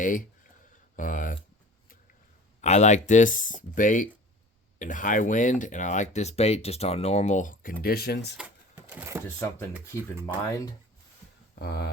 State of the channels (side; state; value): both; normal; correlation 0.41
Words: I like this bait in high wind, and I like this bait just on normal conditions. Just something to keep in mind.